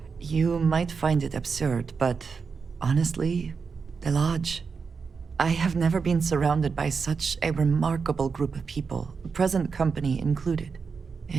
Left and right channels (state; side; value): quieter; left; 5.3 dB